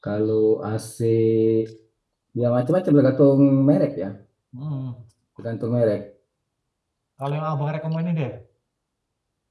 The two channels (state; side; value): identical; both; correlation 1.00